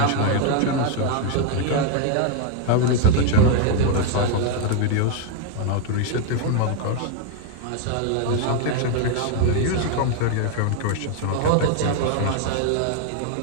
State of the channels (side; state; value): both; different; correlation 0.00